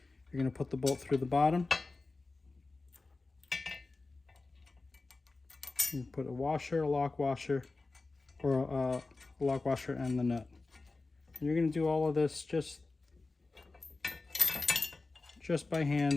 You're going to put the bolt through the bottom. You put a washer, a lock washer, or a lock washer and the nut. And you're going to do all of this just by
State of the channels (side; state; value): right; quieter; 3.5 dB